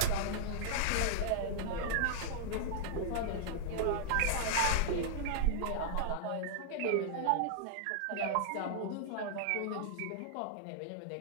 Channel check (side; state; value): both; different; correlation -0.01